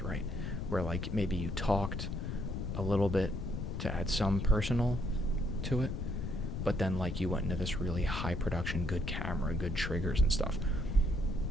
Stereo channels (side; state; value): left; noise; rumble, 3 dB below the sound